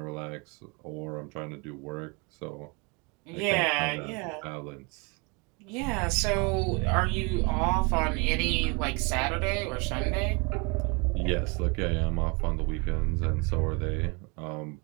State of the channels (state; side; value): quieter; left; 30.7 dB